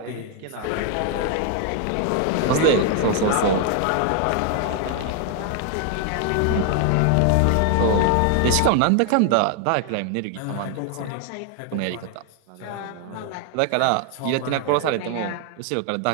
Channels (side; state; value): both; different; correlation 0.00